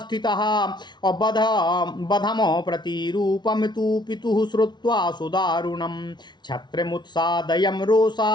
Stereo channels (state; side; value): late; right; 0.21 ms